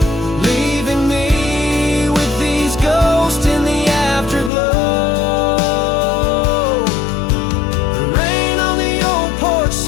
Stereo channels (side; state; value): right; drops out; at 4.5 s